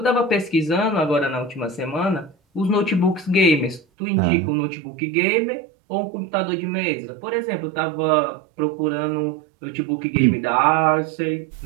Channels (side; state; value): left; drops out; at 3.8 s